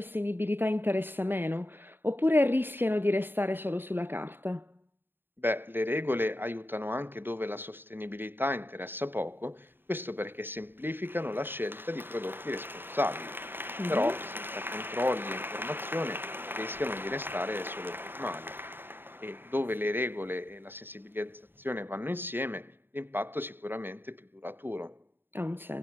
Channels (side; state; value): left; late; 0.099 ms